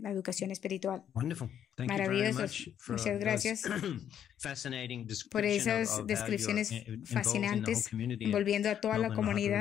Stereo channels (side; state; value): right; quieter; 9.6 dB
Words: espirtual. Maravilloso. Muchas gracias por esas descripciones fascinantes, envolviendo a toda la